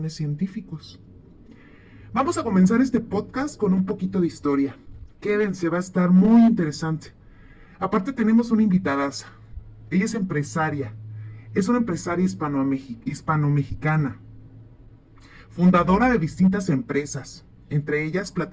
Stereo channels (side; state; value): both; identical; correlation 1.00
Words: científicos. Vamos a comenzar este podcast con un poquito de historia. Quédense, va a estar muy interesante. Aparte tenemos una invitada. Ella es empresaria. Es una empresaria hispano-mexicana. Fundadora de distintas empresas, entre ellas